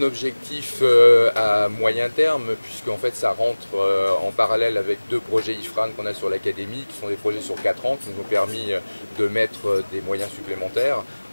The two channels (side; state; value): both; inverted; correlation -1.00